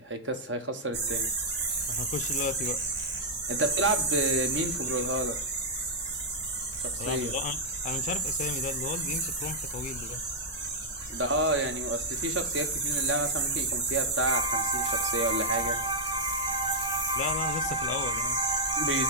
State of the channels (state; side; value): normal; both; correlation -0.05